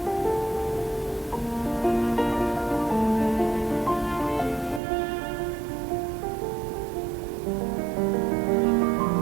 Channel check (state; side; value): drops out; left; at 4.8 s